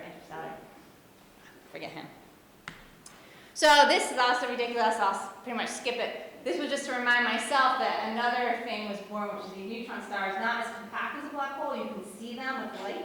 Interstellar. Forget him. So this is also ridiculous. I'll pretty much skip it. This was just to remind myself that another thing was born, which is these neutron stars, not as compact as a black hole. You can see them with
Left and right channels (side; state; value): both; identical; correlation 1.00